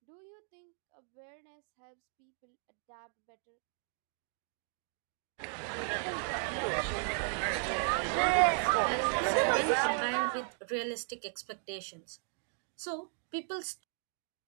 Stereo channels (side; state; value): left; silent; 54 dB below the other